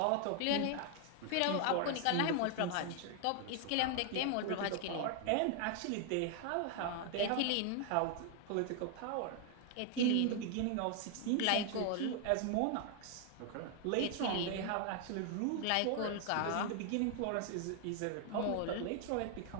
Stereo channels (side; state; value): both; different; correlation 0.00